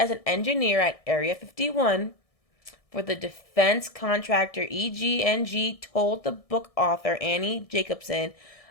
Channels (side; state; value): right; late; 1.6 ms